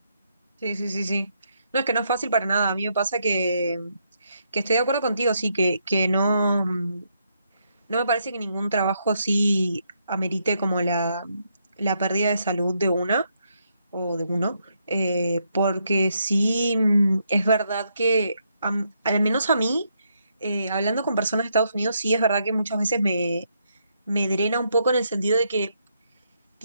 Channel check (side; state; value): both; inverted; correlation -0.77